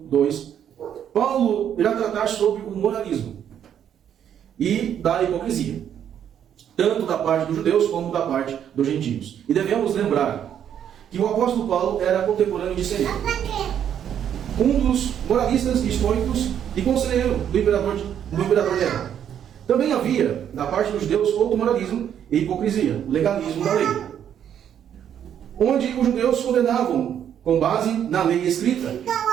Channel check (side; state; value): left; quieter; 9.4 dB